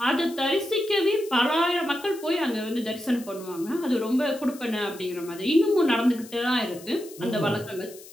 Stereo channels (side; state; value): left; noise; hiss, 19 dB below the sound